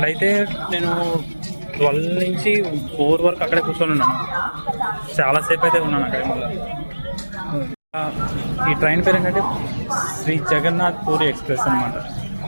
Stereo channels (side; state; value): both; inverted; correlation -1.00